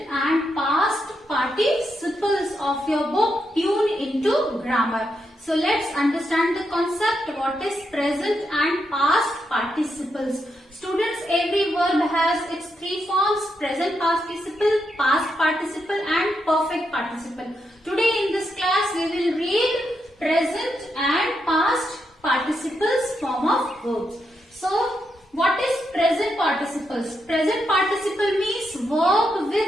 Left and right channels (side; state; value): both; normal; correlation 0.82